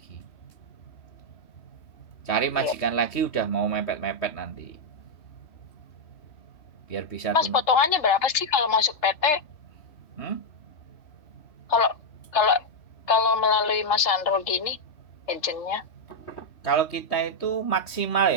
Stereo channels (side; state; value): right; late; 3.3 ms